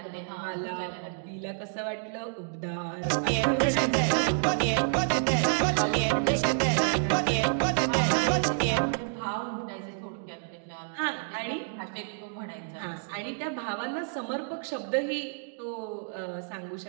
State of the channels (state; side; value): silent; left; digital silence